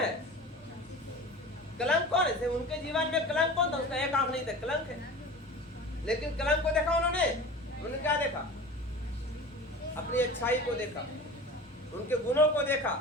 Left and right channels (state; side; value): normal; both; correlation 0.36